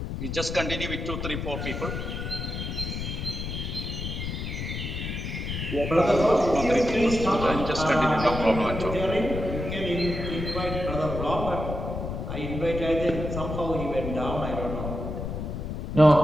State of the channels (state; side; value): noise; left; rumble, 5 dB below the sound